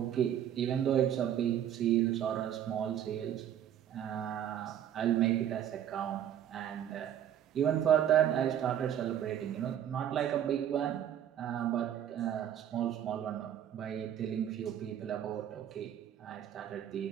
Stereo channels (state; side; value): quieter; left; 10.3 dB